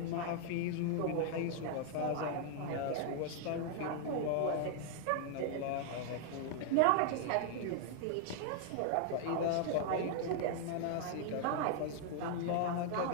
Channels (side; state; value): both; different; correlation 0.00